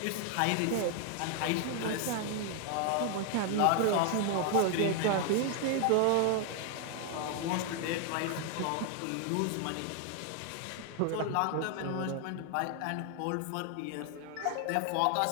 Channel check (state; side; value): different; both; correlation 0.00